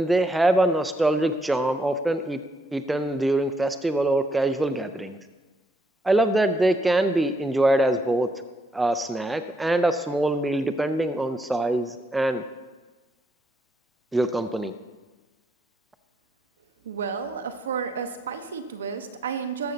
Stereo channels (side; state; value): both; normal; correlation 0.75